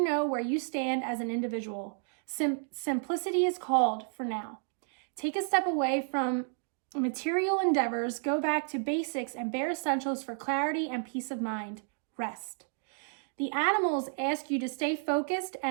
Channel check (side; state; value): left; silent; 57 dB below the other